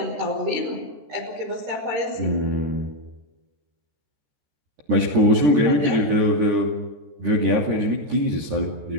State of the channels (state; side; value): late; left; 13 ms